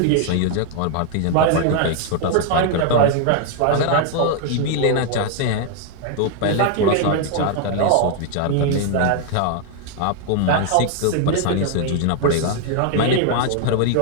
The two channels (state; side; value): different; both; correlation 0.00